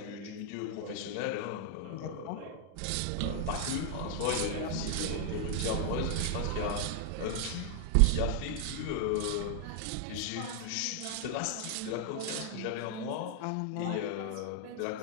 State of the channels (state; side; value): different; both; correlation 0.00